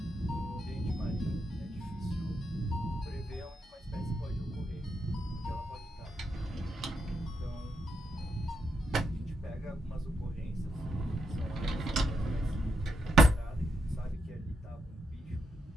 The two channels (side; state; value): both; normal; correlation 0.81